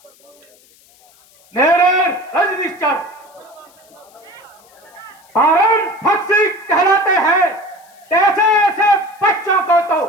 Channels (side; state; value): left; noise; hiss, 29 dB below the sound